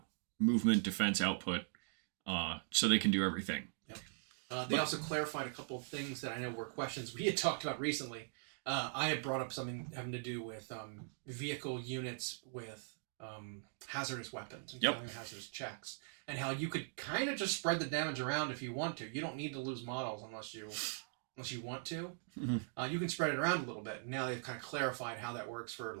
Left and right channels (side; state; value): left; silent; digital silence